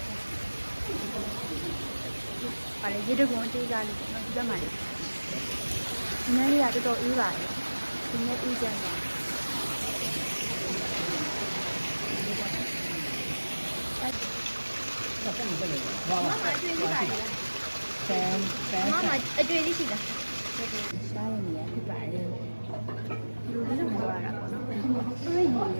ပါလေရေတကွန်အသေးစားလေးပေါ့နော်ဒီဘက်မှာလေဒီနေ့လေးကတော်တော်အေးပါတယ်ဒီနေ့အေးကြတယ်ဘာမှမလုပ်ဘူး။ဘာ မမအတွေ့ရှိပါလား ဆန်ဆန် မမအတွေ့ရှိလားရှားရနေရဖြစ်ပါတယ်လူလေးတော့ပြောရတာပေါ့နော်တွေ့ရည်ပုံလ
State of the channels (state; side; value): inverted; both; correlation -1.00